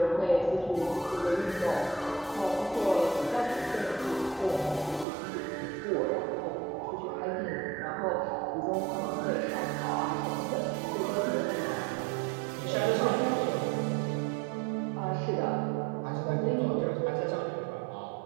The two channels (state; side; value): drops out; left; at 5.1 s